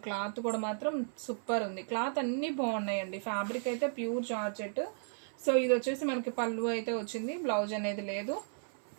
క్లాత్ కూడా మాత్రం సూపర్ ఉంది. క్లాత్ అన్నీ బాగున్నాయండి. ఫ్యాబ్రిక్ అయితే ప్యూర్ జార్జెట్. సో ఇది వచ్చేసి మనకి పళ్ళు అయితే వచ్చింది, బ్లౌజ్ అనేది లేదు.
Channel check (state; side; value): silent; left; 55 dB below the other